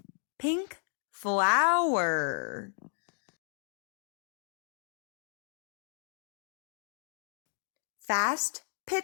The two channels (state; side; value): silent; right; digital silence